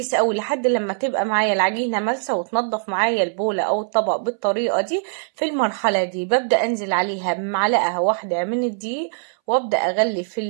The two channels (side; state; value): left; silent; 63 dB below the other